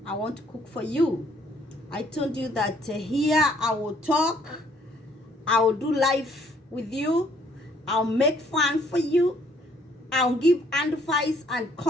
I want to cook for you. I told you that here I will talk, I will do life with you, I'll make fun for you, I'll give advice and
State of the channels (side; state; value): both; normal; correlation 0.63